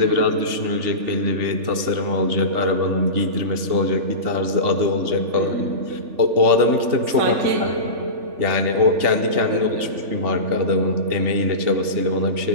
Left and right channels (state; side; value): late; left; 3.4 ms